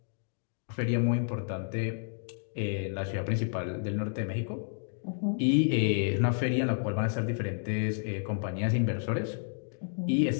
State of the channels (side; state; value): right; silent; digital silence